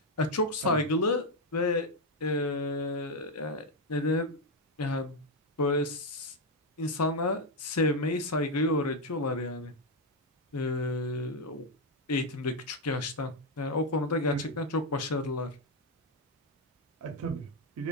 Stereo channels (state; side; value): normal; both; correlation 0.04